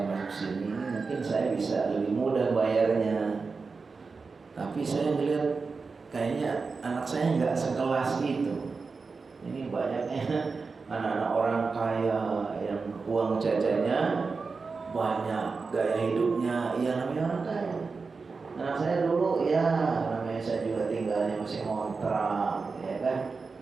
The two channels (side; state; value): left; quieter; 4.5 dB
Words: masuk sini mungkin saya bisa lebih mudah bayarnya. Tapi saya melihat kayaknya anak saya nggak sekelas itu. Ini banyaknya anak-anak orang kaya yang uang jajannya banyak, gaya hidupnya ya namanya orang kaya. Anak saya dulu ya namanya saya juga tinggalnya masih ngontrak ya kan,